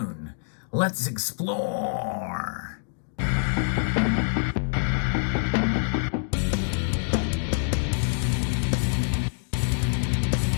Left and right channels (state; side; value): silent; right; digital silence